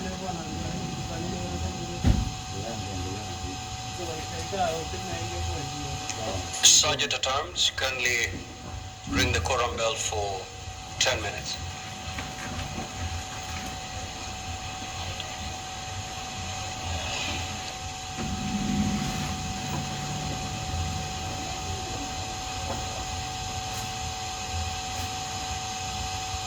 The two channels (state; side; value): identical; both; correlation 1.00